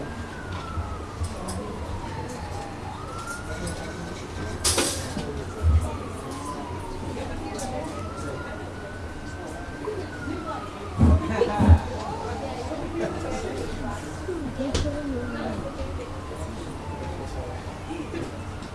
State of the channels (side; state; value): both; identical; correlation 1.00